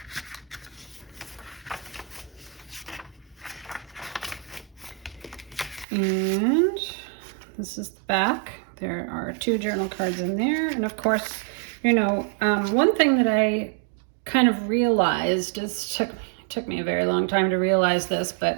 And this is the back. There are 2 journal cards in there. And of course, you know, one thing that I kind of realized, took me a very long time to realize this,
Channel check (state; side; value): drops out; left; at 5.9 s